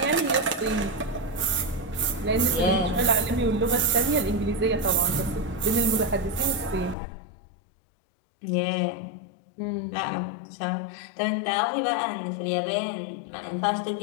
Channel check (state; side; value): drops out; right; at 7.0 s